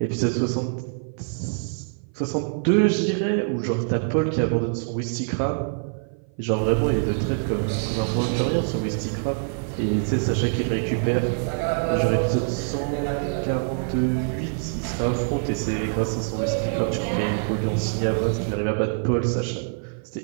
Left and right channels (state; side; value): silent; left; 56 dB below the other